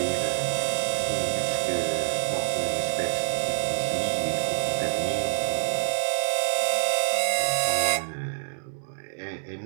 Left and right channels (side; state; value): left; silent; 61 dB below the other